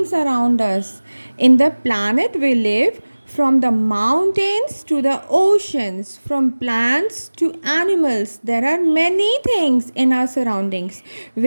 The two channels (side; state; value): both; inverted; correlation -1.00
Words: around us. In the planet we live, from the mountains to the oceans, from plants to animals, there are many things in our surroundings